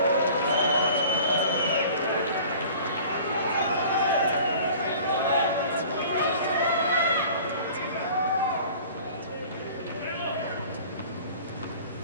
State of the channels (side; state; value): both; inverted; correlation -0.45